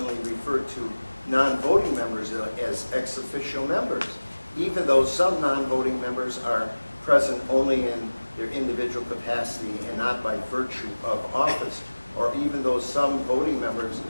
refer to non-voting members as ex officio members, even though some non-voting members are present only in their individual capacity and not by virtue of office, or even though some voting members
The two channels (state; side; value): inverted; both; correlation -1.00